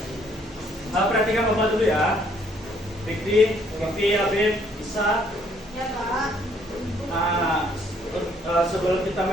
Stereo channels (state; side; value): normal; both; correlation 0.65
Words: Perhatikan Bapak dulu ya. Fikri, Habib, Isa. Ya, Pak. Sebelum kita